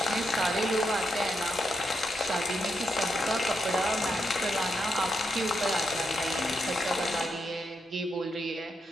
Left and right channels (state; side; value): normal; both; correlation 0.83